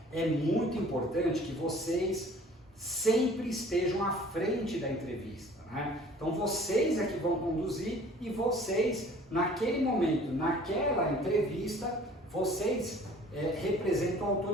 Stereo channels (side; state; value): both; normal; correlation 0.50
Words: é muito importante que vocês sempre estejam à frente da entrevista, né? Então vocês é que vão conduzir e vocês, naquele momento, naquela entrevista, vocês representam a